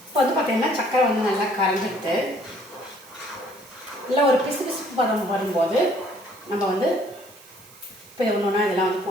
இப்போ வந்து பார்த்திங்கன்னா சர்க்கரை வந்து நல்லா கரைஞ்சிட்டு நல்லா ஒரு பிசு பிசுப்பு பதம் வரும்போது நம்ம வந்து இப்போ ஒன்று ஒன்றா இதெல்லாம் வந்து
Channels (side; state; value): right; noise; hiss, 23 dB below the sound